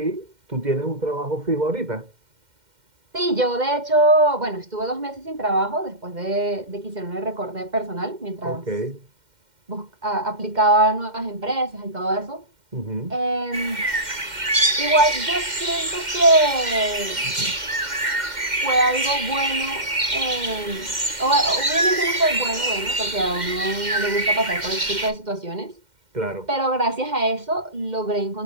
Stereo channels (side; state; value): left; late; 2.1 ms